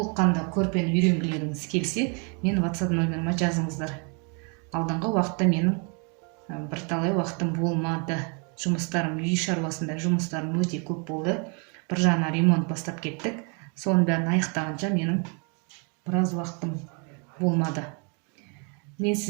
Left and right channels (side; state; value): left; quieter; 35.9 dB